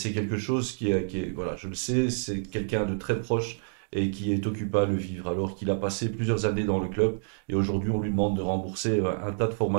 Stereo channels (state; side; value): silent; left; digital silence